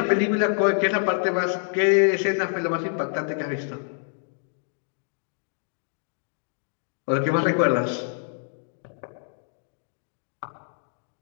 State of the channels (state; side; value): silent; right; digital silence